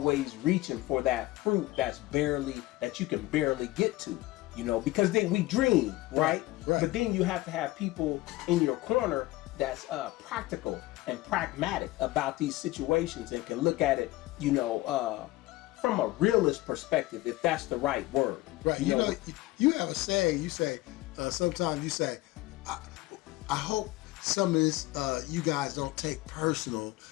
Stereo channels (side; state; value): right; quieter; 18.8 dB